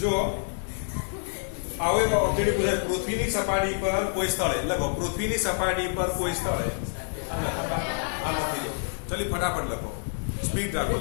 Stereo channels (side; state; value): right; silent; digital silence